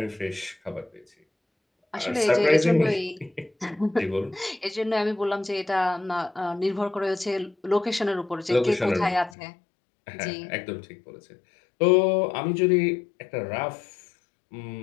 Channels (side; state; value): right; drops out; at 9.3 s